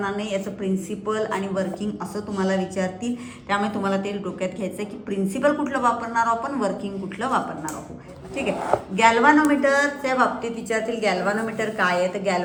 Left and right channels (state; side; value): identical; both; correlation 1.00